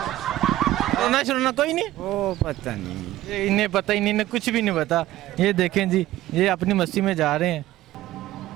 कोरोना शरोना कोई नहीं। ओ पता नहीं। इन्हें पता ही नहीं, इन्हें कुछ भी नहीं पता। ये देखें जी, ये अपनी मस्ती में जा रहे हैं।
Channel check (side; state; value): left; quieter; 15.1 dB